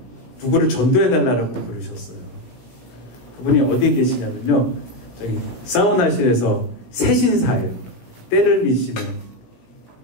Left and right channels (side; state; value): right; late; 17 ms